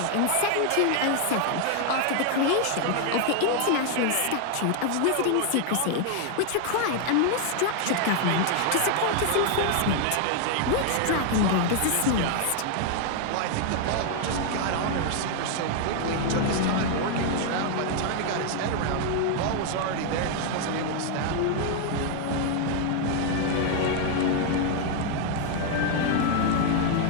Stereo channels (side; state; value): both; different; correlation 0.00